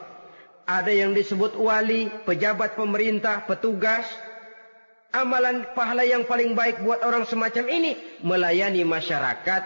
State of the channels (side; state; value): both; inverted; correlation -1.00